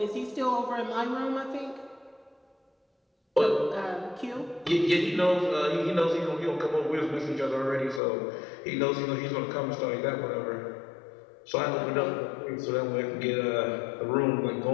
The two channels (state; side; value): drops out; right; at 8.0 s